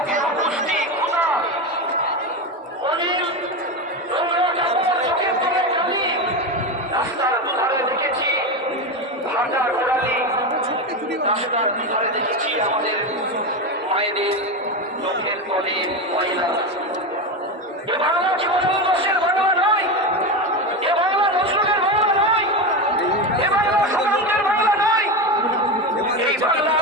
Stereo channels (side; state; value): both; normal; correlation 0.17